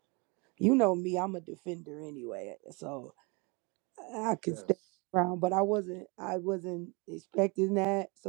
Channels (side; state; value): left; quieter; 30.2 dB